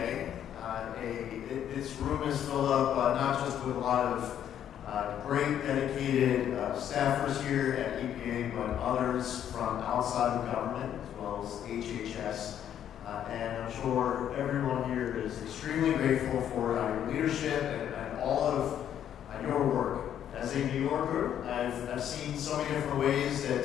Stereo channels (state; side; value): quieter; right; 10.0 dB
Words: This room is filled up not just with a lot of great dedicated staffers here at EPA, but others from outside the government, as well as HHS. And I'm sure everyone here is extremely grateful for your leadership and all of your work. As a New Yorker, I've seen so many different ways that